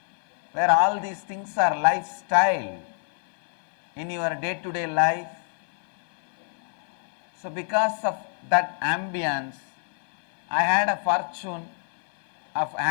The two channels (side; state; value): right; silent; 60 dB below the other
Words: where all these things are lifestyle in your day-to-day life. So because of that ambience, I had a fortune of